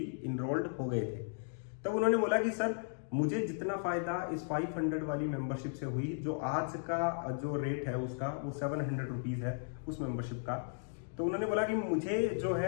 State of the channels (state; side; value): silent; right; digital silence